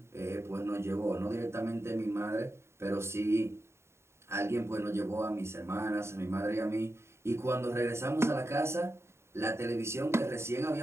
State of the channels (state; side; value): late; left; 0.13 ms